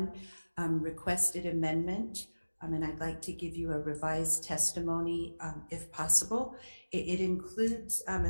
requested amendment, and I'd like to give you a revised testimony if possible. It includes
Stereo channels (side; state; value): both; inverted; correlation -1.00